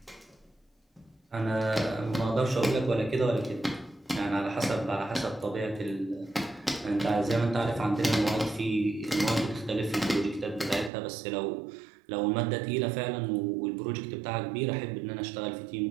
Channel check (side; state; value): left; drops out; at 10.9 s